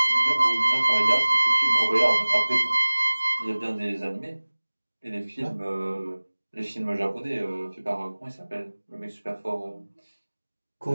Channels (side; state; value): both; inverted; correlation -1.00